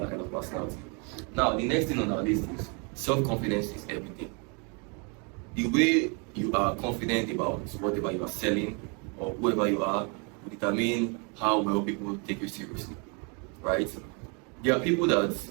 kind of personality. Now, the next thing on our list is self-confidence is everything. The way you are confident about whatever you are selling or whoever you are will determine how well people take you seriously, right? There are people that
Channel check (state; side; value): quieter; left; 34.6 dB